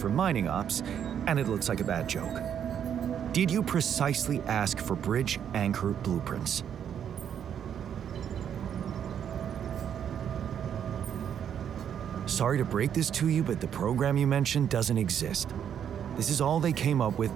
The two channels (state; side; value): quieter; left; 8.8 dB